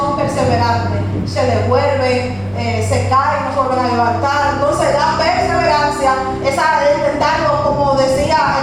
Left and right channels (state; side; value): noise; right; rumble, 23 dB below the sound